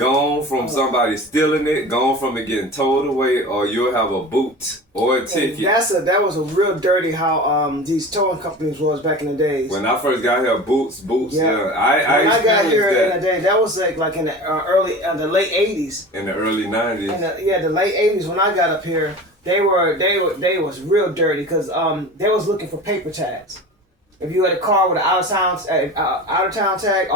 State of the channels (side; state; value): both; normal; correlation 0.35